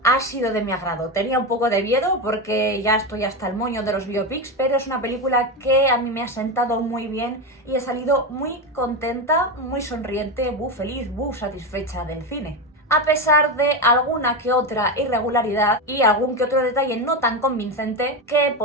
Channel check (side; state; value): both; normal; correlation 0.15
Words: ha sido de mi agrado. Tenía un poco de miedo porque ya estoy hasta el moño de los biopics, pero es una película que a mí me ha sentado muy bien y he salido muy contenta, muy sonriente, feliz, satisfecha del cine. A pesar de alguna que otra irregularidad y algún que otro detalle no tan convincente que